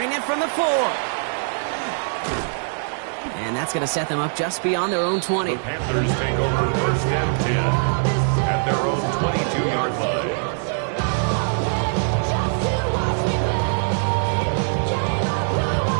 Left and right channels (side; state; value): left; silent; 64 dB below the other